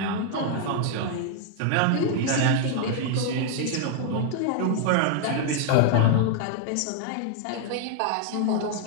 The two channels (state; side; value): different; both; correlation 0.00